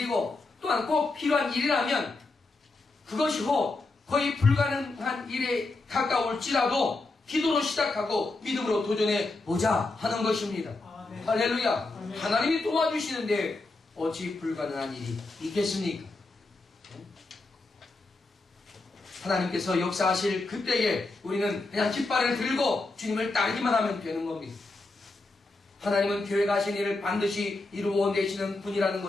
또한 꼭 필요한 일이라면 그것이 거의 불가능한 일에 가까울지라도 기도로 시작하고 믿음으로 도전해보자 하는 것입니다. 할렐루야. 하나님이 도와주시는데 어찌 불가능한 일이 있겠습니까? 하나님께서 역사하실 그때에 우리는 그냥 깃발을 들고 주님을 따르기만 하면 되는 겁니다. 하나님은 계획하신 일을 반드시 이루어내시는 분이라는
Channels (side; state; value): right; quieter; 3.3 dB